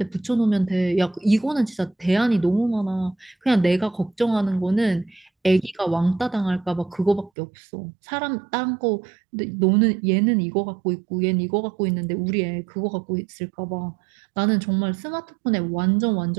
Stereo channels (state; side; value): drops out; left; at 7.3 s